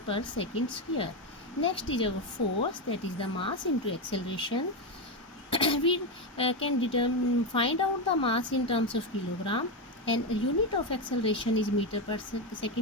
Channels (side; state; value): both; normal; correlation 0.10